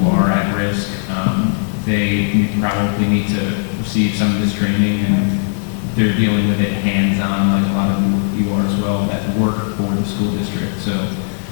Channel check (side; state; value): right; silent; digital silence